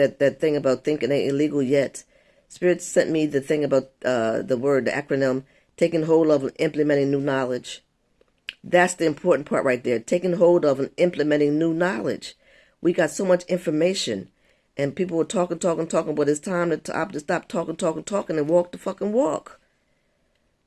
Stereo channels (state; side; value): identical; both; correlation 1.00